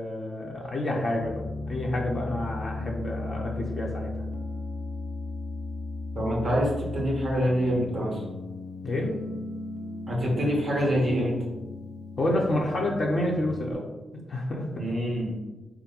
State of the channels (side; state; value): both; normal; correlation 0.84